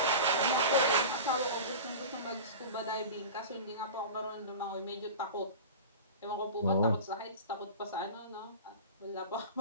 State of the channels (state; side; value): inverted; both; correlation -0.32